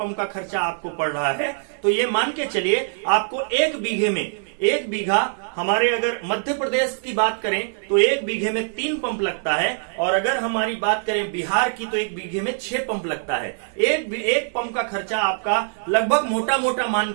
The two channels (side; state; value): left; silent; 58 dB below the other